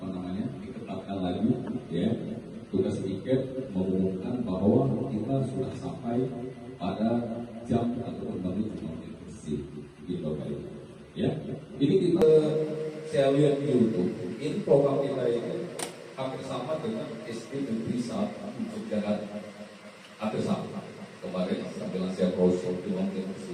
diketatkan lagi, tugas tiket mengumumkan bahwa kita sudah sampai pada jam ataupun menit bersih. Ini kita saya lihat di YouTube. Ini program kita ini hampir sama dengan SD Negeri 1 Jakarta. Hampir sama. Kemarin sambil saya browsing di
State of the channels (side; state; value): both; identical; correlation 1.00